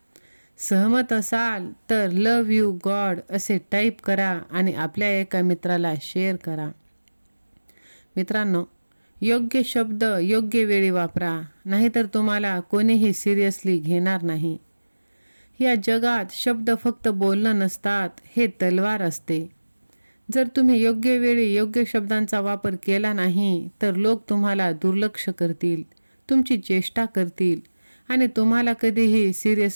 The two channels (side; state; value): both; inverted; correlation -1.00